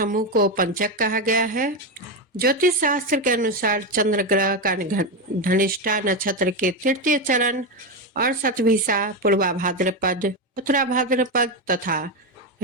को पंचक कहा गया है। ज्योतिष शास्त्र के अनुसार चंद्र ग्रह का धनिष्ठा नक्षत्र के तृतीय चरण और शतभिषा, पूर्वा भाद्रपद, उत्तरा भाद्रपद तथा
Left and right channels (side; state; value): both; normal; correlation 0.12